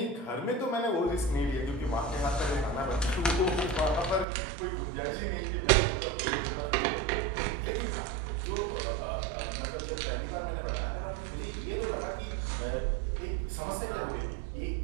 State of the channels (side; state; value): left; drops out; at 4.2 s